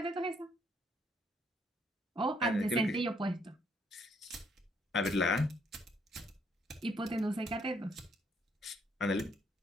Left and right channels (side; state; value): both; normal; correlation 0.69